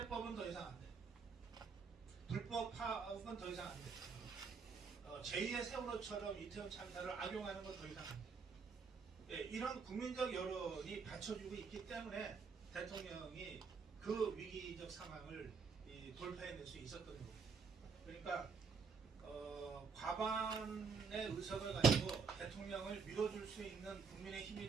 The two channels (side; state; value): left; quieter; 5.5 dB